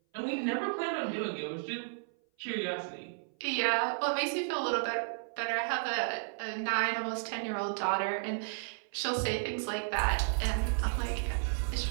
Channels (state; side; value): silent; left; 56 dB below the other